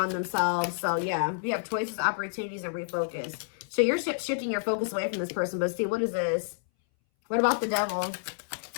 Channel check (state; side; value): silent; right; 59 dB below the other